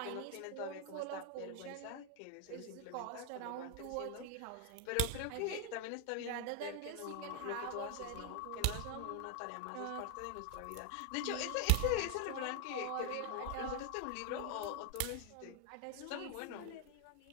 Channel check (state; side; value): different; both; correlation 0.01